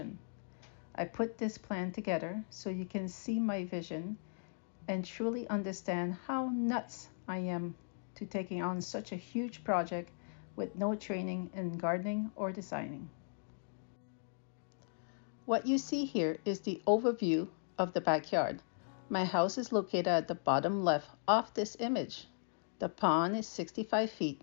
I put this plan together so you can see my vision and truly understand how nuts I am to taking on such a huge project with no training in gardening or designing. What you see here is the overview of the backyard. My house is located at the bottom left of this image. The pond is 65 feet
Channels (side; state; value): right; silent; digital silence